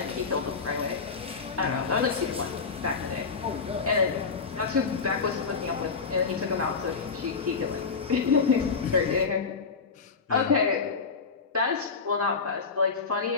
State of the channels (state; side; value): quieter; right; 5.0 dB